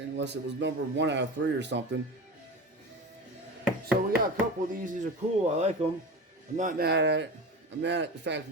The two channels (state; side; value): normal; both; correlation 0.29